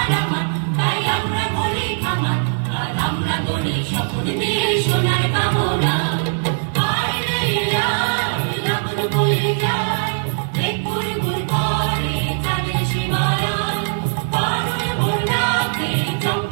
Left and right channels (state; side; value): silent; left; digital silence